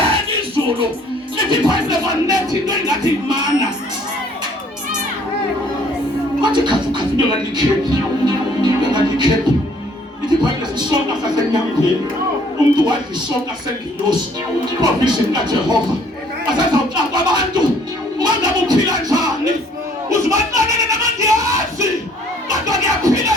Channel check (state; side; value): normal; both; correlation 0.59